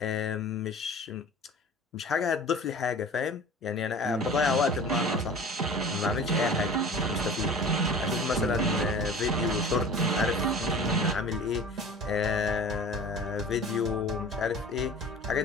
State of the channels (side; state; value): both; normal; correlation 0.40